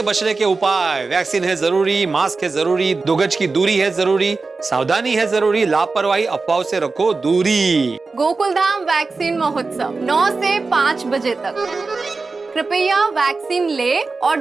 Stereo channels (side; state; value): left; quieter; 4.0 dB